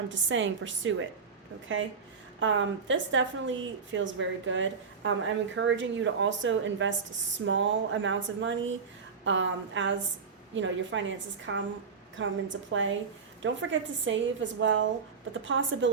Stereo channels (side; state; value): left; quieter; 5.5 dB